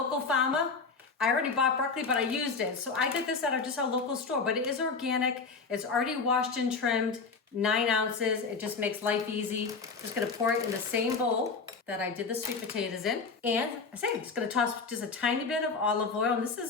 farmer. I already bought broccoli, but I used it. So I get this out of just our local store, but it is organic. It's already washed and trimmed. 9 ounces, it just makes life easy. Just gonna pour it in the same bowl that I did the sweet potatoes in. And I'm just gonna toss just a tiny bit of olive oil, and this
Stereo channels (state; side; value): quieter; right; 4.7 dB